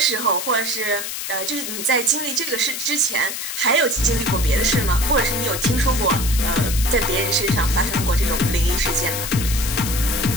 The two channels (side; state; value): left; noise; hiss, 5 dB below the sound